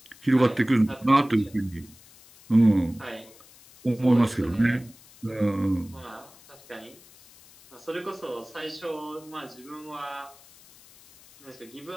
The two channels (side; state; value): left; noise; hiss, 24 dB below the sound